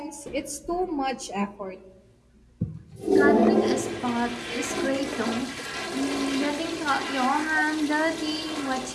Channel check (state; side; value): identical; both; correlation 1.00